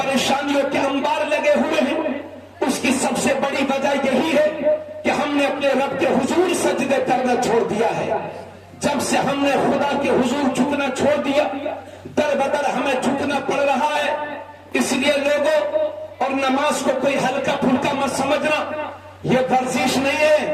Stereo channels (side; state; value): both; identical; correlation 1.00